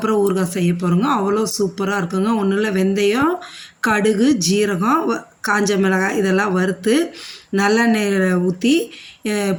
ஊறுகாய் செய்ய போகிறோங்க. அவ்வளோ சூப்பராக இருக்குங்க. ஒன்றும் இல்லை, வெந்தயம், கடுகு, ஜீரகம், காஞ்ச மிளகாய் இதெல்லாம் வறுத்து நல்லெண்ணெயில் ஊற்றி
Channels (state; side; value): identical; both; correlation 1.00